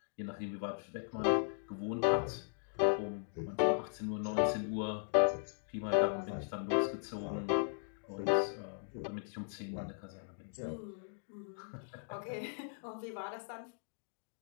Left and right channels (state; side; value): silent; right; digital silence